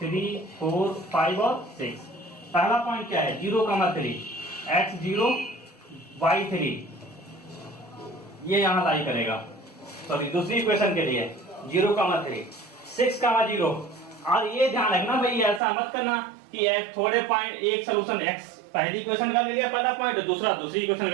4 5 और 6। पहला पॉइंट क्या है 0,3, x 0 y 3, ये यहां लाई करेगा। सॉरी दूसरी इक्वेशन के लिए 0,3 6,0। और ये ध्यान रखना भाई ऐसा मत करना कि थोड़े पॉइंट एक सोल्यूशन x पहली इक्वेशन का ले लिया पहला पॉइंट, दूसरा दूसरी इक्वेशन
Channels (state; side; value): drops out; left; at 15.6 s